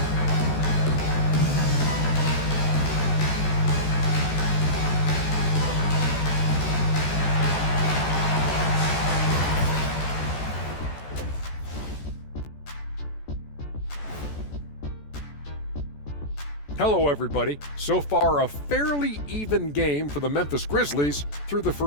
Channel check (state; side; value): late; right; 14 ms